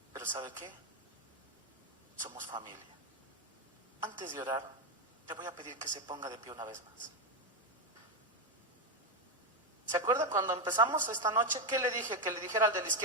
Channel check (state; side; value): normal; both; correlation 0.06